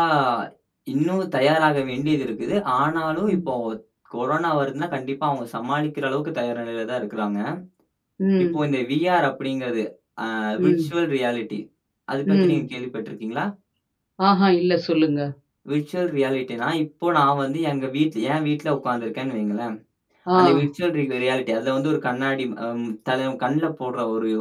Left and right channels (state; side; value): identical; both; correlation 1.00